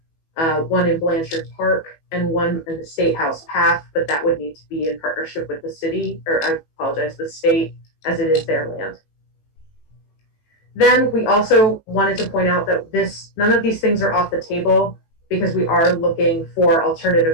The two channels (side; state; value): right; late; 18 ms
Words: one in Blanchard Park and one in the State House Path, but that would need to be in partnership with the city, or I apologize, the state, as it is their land. Then we also wanted to point out that none of these things are off the table because we are looking for